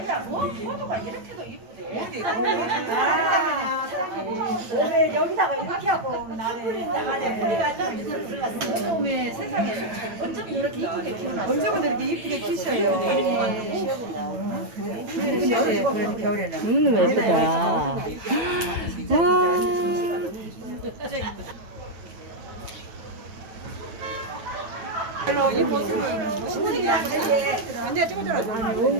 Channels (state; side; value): late; left; 9.1 ms